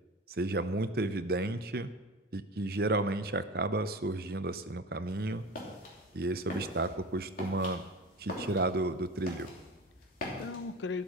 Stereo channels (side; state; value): both; normal; correlation 0.33